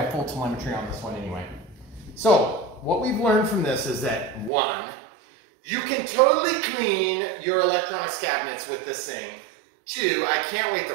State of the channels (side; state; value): left; drops out; at 4.5 s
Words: full telemetry on this one anyway. So what we've learned from this is that 1, you can totally clean your electronics cabinets with this thing. 2, I can't wait to